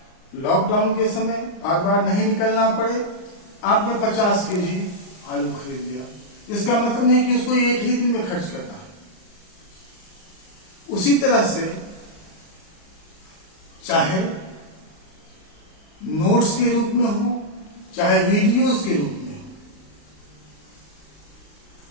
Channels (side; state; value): right; late; 39 ms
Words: लॉकडाउन के समय बार बार नहीं निकलना पड़े, आपने 50 केजी आलू खरीद लिया। इसका मतलब नहीं कि उसको एक ही दिन में खर्च करना है। उसी तरह से चाहे नोट्स के रूप में हो, चाहे वीडियोस के रूप में हो,